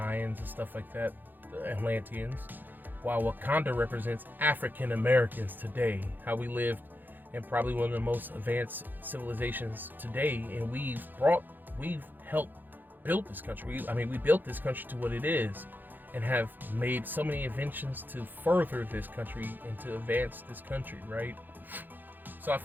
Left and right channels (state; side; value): late; left; 0.088 ms